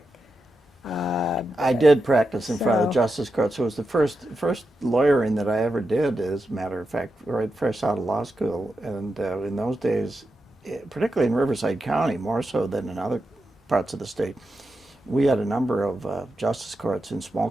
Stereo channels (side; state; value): both; normal; correlation 0.88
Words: I did practice in front of the so- justice courts. It was the first lawyering that I ever did, as a matter of fact, right fresh out of law school. And in those days, particularly in Riverside County, more so than in other parts of the state, we had a number of justice courts in small